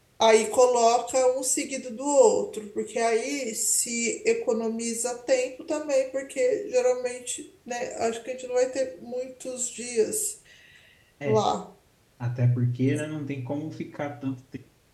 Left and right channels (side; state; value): both; identical; correlation 1.00